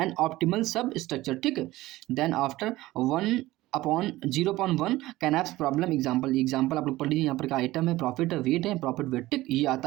optimal सब स्ट्रक्चर। ठीक है, देन आफ्टर 1/0/1 कैनैप्स प्रॉब्लम एग्जाम्पल आप लोग पढ़ लीजिए। यहाँ पर का आइटम है, प्रॉफिट है, वेट है, प्रॉफिट वेट। ठीक, ये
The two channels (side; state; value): left; quieter; 17.6 dB